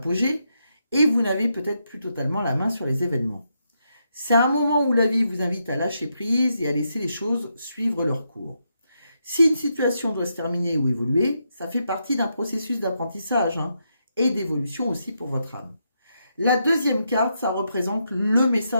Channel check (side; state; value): both; inverted; correlation -0.81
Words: et vous n'avez peut-être plus totalement la main sur les événements. C'est un moment où la vie vous invite à lâcher prise et à laisser les choses suivre leur cours. Si une situation doit se terminer ou évoluer, ça fait partie d'un processus d'apprentissage et d'évolution aussi pour votre âme. La deuxième carte, ça représente le